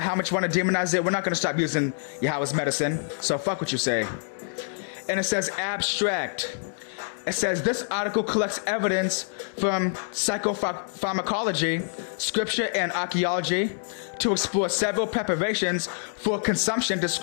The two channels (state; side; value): silent; right; digital silence